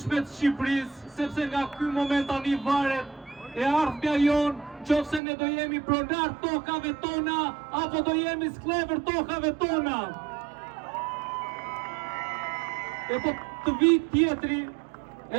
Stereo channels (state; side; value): drops out; left; at 5.2 s